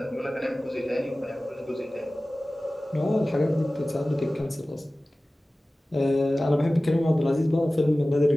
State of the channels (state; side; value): normal; both; correlation 0.97